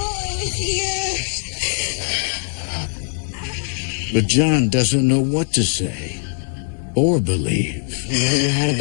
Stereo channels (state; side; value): silent; right; 58 dB below the other